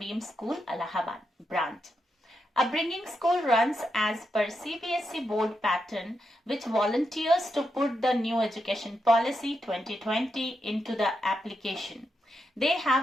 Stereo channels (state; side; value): normal; both; correlation 0.85